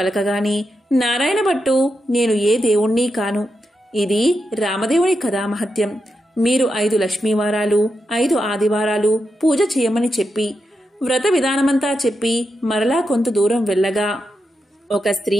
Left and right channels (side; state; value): both; normal; correlation 0.86